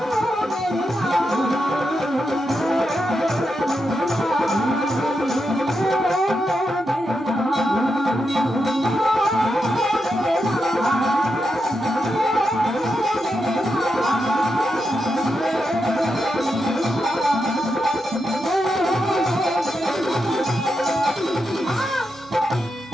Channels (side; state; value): both; normal; correlation 0.85